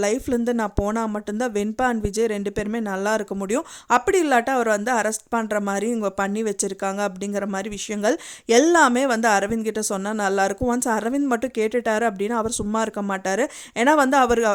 லைஃப்லேருந்து நான் போனால் மட்டும்தான் வெண்பா அண்ட் விஜய் 2 பேருமே நல்லா இருக்க முடியும். அப்படி இல்லாட்டா அவர் வந்து அரெஸ்ட் பண்ணுற மாதிரி இவங்க பண்ணி வச்சுருக்காங்க அப்படிங்கிற மாதிரி விஷயங்கள் எல்லாமே வந்து அரவிந்த் கிட்ட சொன்னால் நல்லாயிருக்கும். ஒன்ஸ் அரவிந்த் மட்டும் கேட்டுட்டாரு அப்படின்னா அவர் சும்மா இருக்க மாட்டார். ஏன்னா வந்து அவர்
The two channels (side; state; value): both; identical; correlation 1.00